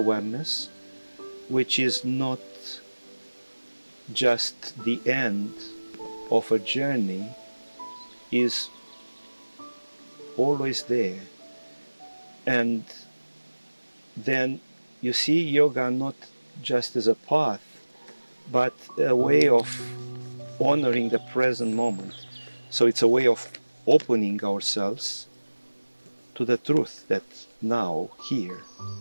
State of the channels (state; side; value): inverted; both; correlation -1.00